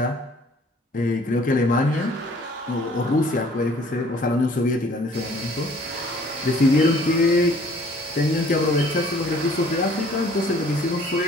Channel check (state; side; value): normal; both; correlation 0.55